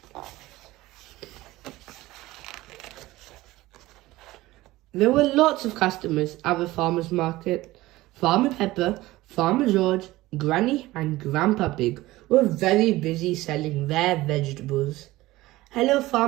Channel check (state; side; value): quieter; left; 18.1 dB